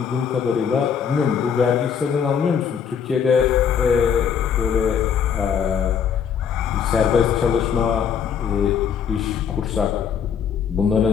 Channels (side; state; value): right; quieter; 7.4 dB